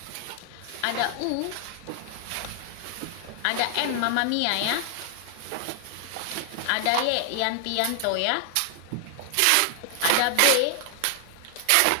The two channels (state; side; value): different; both; correlation 0.00